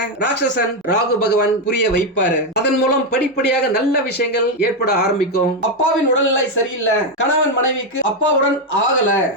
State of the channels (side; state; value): both; normal; correlation 0.05